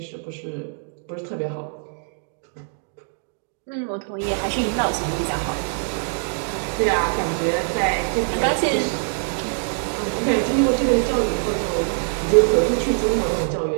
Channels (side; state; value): left; silent; digital silence